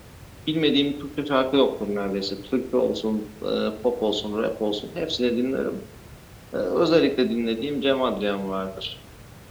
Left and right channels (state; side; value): identical; both; correlation 1.00